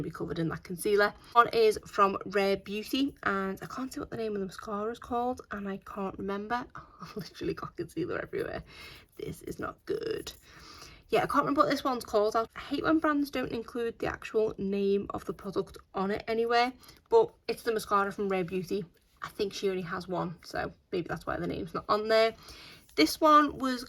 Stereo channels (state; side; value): identical; both; correlation 1.00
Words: to be covered in that concealer. One is from Rare Beauty, and I can't see what the name of the mascara is called, and I can't remember. I've literally got concealer everywhere. This is not good. Yeah, I can't remember what this one's called. I hate when brands don't include the actual name of the product on it anywhere, but it's the mascara from Rare Beauty. I think she only has one, so maybe that's why the name's not on there. This one was